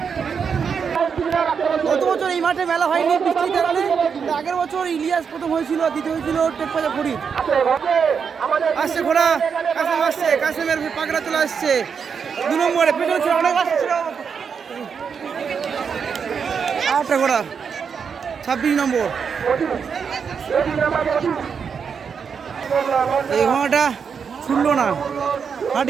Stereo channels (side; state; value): left; quieter; 6.4 dB